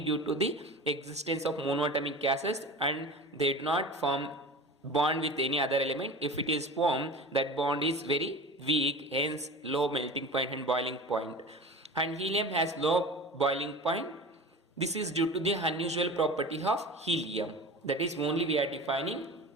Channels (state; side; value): normal; both; correlation 0.34